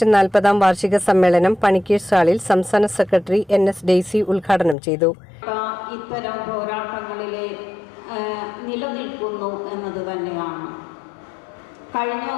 40-ാം വാർഷിക സമ്മേളനം പണിക്കേഴ്സ് ഹാളിൽ സംസ്ഥാന സെക്രട്ടറി NS ഡെയ്സി ഉദ്ഘാടനം ചെയ്തു. ഇത്തരം പോരാട്ടങ്ങളിലെ നിലനിൽക്കുന്നു എന്നത് തന്നെയാണ്. കഴിഞ്ഞ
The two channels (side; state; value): right; drops out; at 4.8 s